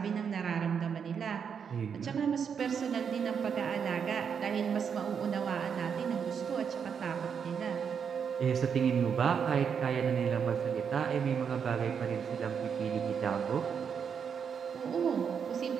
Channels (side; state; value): left; quieter; 7.0 dB